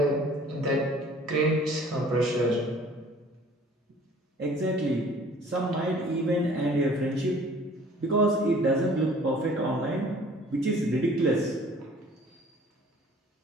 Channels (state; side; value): normal; both; correlation 0.52